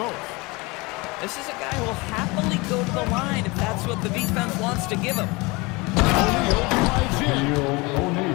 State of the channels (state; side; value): quieter; right; 25.1 dB